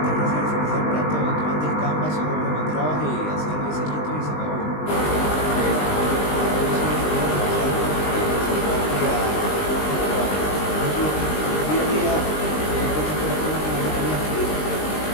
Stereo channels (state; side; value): late; right; 20 ms